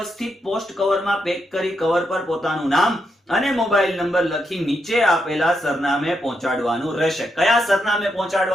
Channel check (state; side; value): normal; both; correlation 0.81